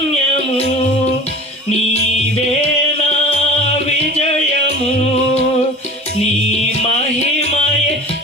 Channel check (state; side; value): normal; both; correlation 0.38